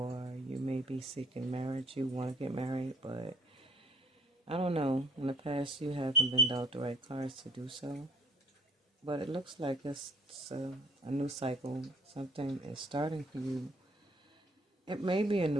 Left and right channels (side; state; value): both; normal; correlation 0.57